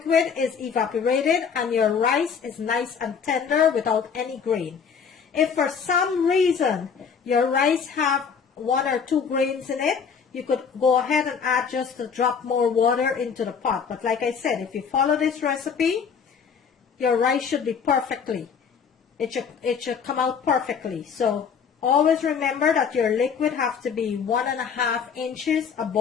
is evaporated and your rice is nice and tender without any grain. If for some reason your rice have 1 or 2 grains in it, you could go ahead and add just a drop more water into the pot. But like I said, if you follow this recipe, your rice should be perfectly. It should come out perfectly. So Always remember that your liquid has to be 1.5 inches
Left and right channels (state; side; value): quieter; right; 6.5 dB